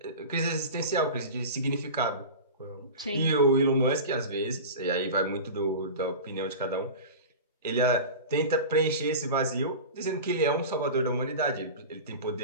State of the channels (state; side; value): inverted; both; correlation -0.30